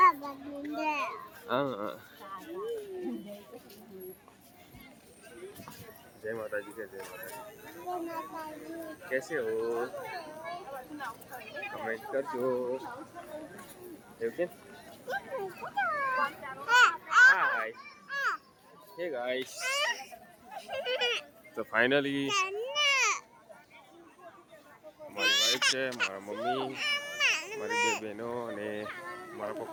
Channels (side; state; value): both; identical; correlation 1.00